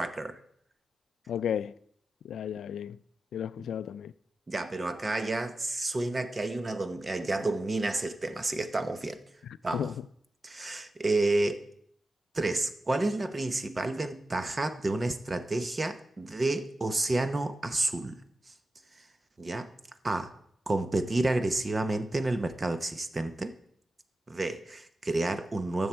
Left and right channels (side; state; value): both; normal; correlation 0.92